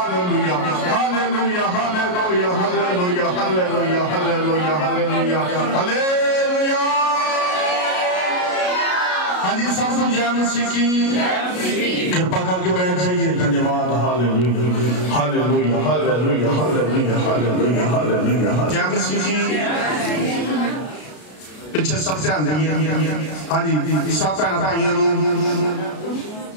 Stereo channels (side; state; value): right; late; 33 ms